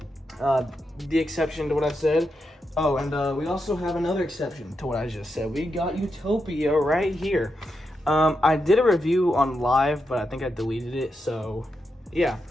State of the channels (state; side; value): normal; both; correlation 0.85